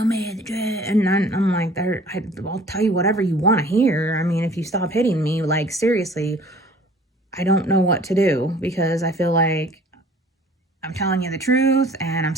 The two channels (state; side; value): normal; both; correlation 0.51